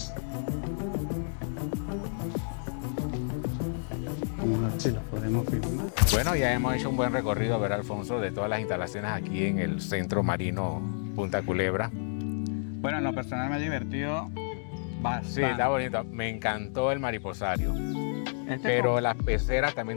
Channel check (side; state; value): right; silent; digital silence